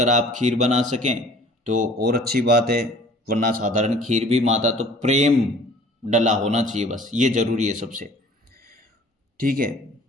आप खीर बना सकें तो और अच्छी बात है, वरना साधारण खीर भी, माता तो प्रेम डला होना चाहिए, बस ये जरूरी है सबसे, ठीक है।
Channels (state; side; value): normal; both; correlation 0.50